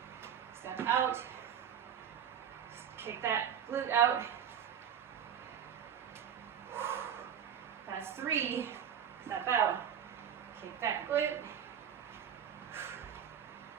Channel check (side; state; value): left; quieter; 8.6 dB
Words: Step out. Kick that glute out. That's 3. Step out. Kick that glute.